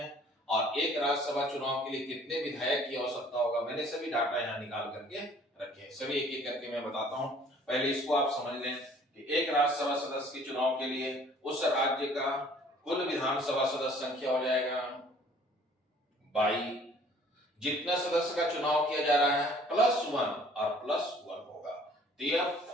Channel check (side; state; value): both; normal; correlation 0.55